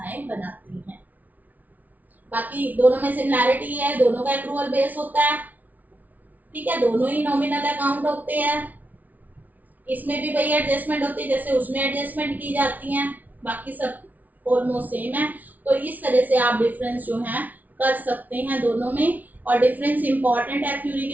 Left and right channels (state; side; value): late; left; 0.077 ms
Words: बनाती हैं। बाकी दोनों में सिमिलैरिटी है, दोनों का एक्रूअल बेस होता है। ठीक है, दोनों ही नॉमिनल अकाउंट होते हैं। इसमें भी वही एडजस्टमेंट होती है जैसे उसमें एडजस्टमेंट की जाती हैं, बाकी सब ऑलमोस्ट सेम है। तो इस तरह से आप डिफरेंस जो है कर सकते हैं दोनों में, और डिफरेंस इंपॉर्टेंट है थ्योरी